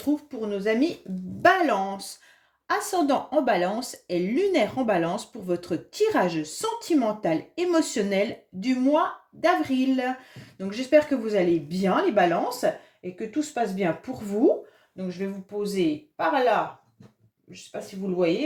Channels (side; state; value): both; identical; correlation 1.00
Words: pour nos amis Balance. Ascendant en Balance et lunaire en Balance pour votre tirage sentimental émotionnel du mois d'avril. Donc j'espère que vous allez bien les Balances et que tout se passe bien pour vous. Donc je vais vous poser par là, je ne sais pas si vous le voyez,